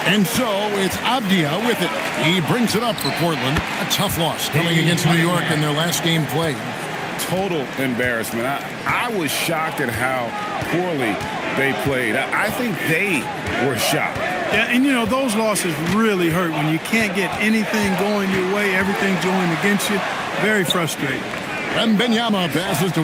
And so it's Abdia with it. He brings it up for Portland. A tough loss coming against New York in their last game played. Total embarrassment. I was shocked at how poorly they played. I think they were shocked. Yeah, and you know, those losses really hurt when you can't get anything going your way, everything's going against you. Very frustrating. Wembanyama passes to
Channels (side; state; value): both; identical; correlation 1.00